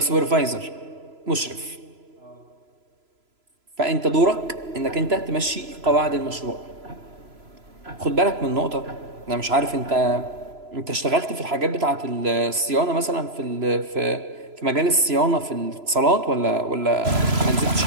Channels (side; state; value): left; late; 3.0 ms